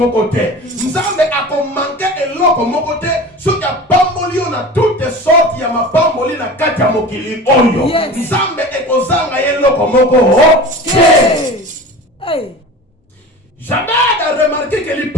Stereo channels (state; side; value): normal; both; correlation 0.35